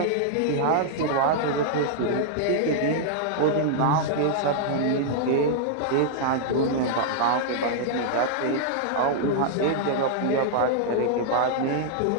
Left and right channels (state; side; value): different; both; correlation -0.01